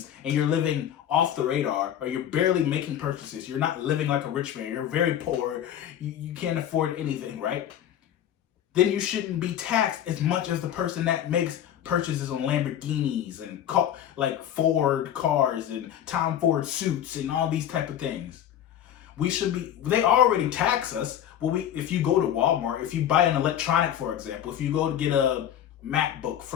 and you're living off the radar or you're barely making purchases, you're not living like a rich man, you're very poor, you can't afford anything, right? Then you shouldn't be taxed as much as the person that makes purchases on Lamborghinis and like Ford cars and Tom Ford suits and all these type of things. We should be, they already tax us. Well, if you go to Walmart, if you buy an electronic, for example, if you go to get a MacBook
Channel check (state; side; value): quieter; right; 10.5 dB